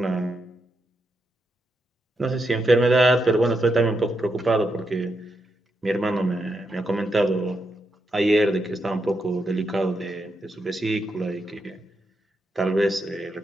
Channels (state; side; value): normal; both; correlation 0.83